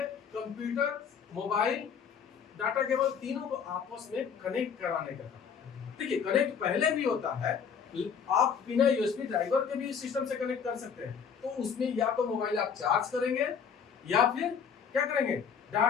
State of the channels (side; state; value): right; quieter; 6.9 dB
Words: कंप्यूटर, मोबाइल, डाटा केबल, तीनों को आपस में कनेक्ट कराने का काम। देखिए, कनेक्ट पहले भी होता है, आप बिना यूएसबी ड्राइवर के भी सिस्टम से कनेक्ट कर सकते हैं। तो उसमें या तो मोबाइल आप चार्ज करेंगे, या फिर क्या करेंगे,